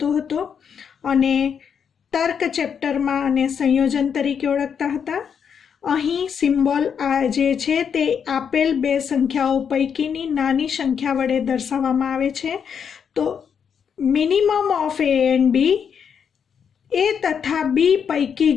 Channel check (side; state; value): right; quieter; 7.3 dB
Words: हतो अने तर्क चेप्टर में आने संयोजन तरीके ओळखता हता। अहीं सिम्बोल आ जे छे ते आपेल बे संख्याओं पैकीनी नानी संख्या वडे दर्शाववामां आवे छे। तो minimum of a and b, a तथा बी पैकी